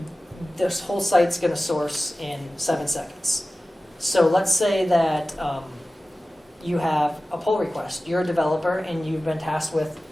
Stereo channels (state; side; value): normal; both; correlation 0.96